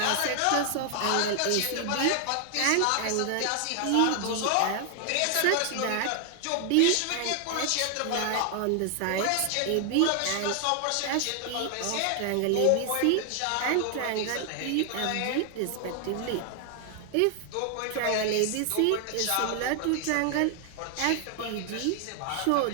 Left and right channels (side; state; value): both; different; correlation 0.00